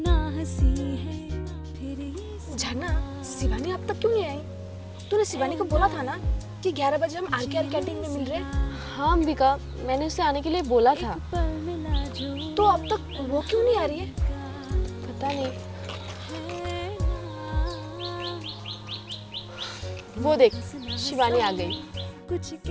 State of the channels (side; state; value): both; identical; correlation 1.00